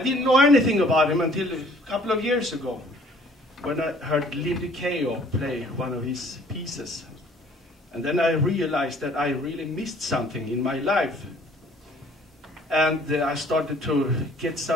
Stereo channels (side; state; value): both; normal; correlation 0.57